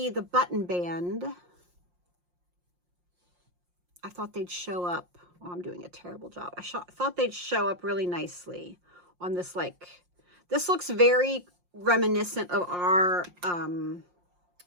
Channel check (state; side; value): late; left; 5.6 ms